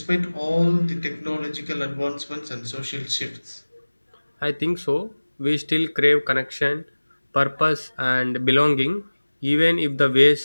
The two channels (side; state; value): both; inverted; correlation -1.00